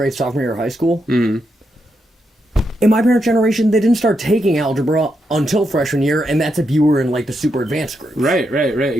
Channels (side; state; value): both; normal; correlation 0.82